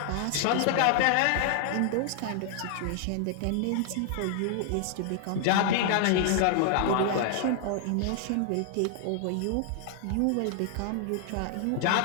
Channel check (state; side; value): different; both; correlation 0.00